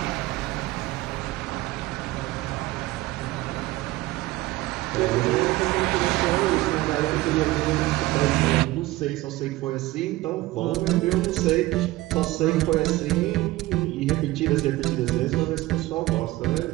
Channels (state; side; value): quieter; left; 18.2 dB